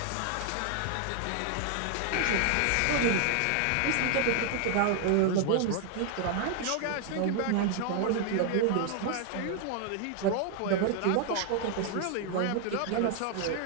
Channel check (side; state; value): both; different; correlation 0.00